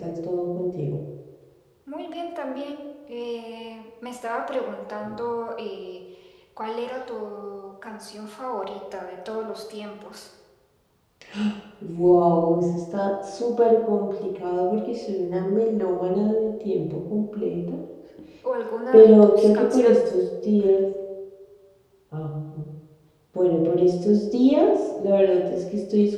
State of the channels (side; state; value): both; identical; correlation 1.00